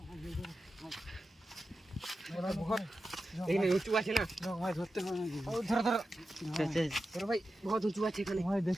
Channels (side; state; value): both; normal; correlation 0.91